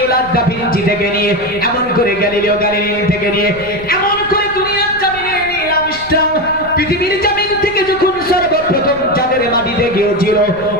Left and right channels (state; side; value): noise; left; rumble, 18 dB below the sound